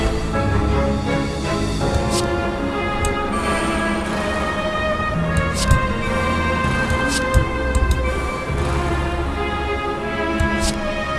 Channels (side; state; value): both; identical; correlation 1.00